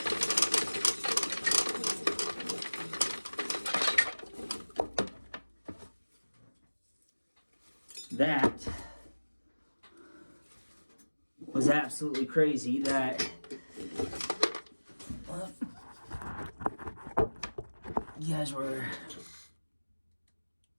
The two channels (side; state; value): both; inverted; correlation -1.00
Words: That was absolutely crazy. That you guys were.